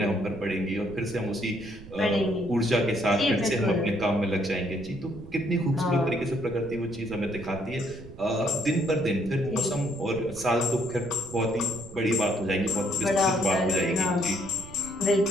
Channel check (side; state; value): right; noise; rumble, 17 dB below the sound